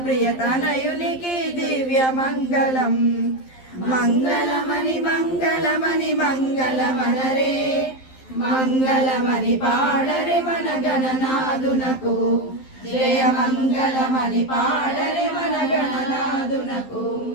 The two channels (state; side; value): late; right; 11 ms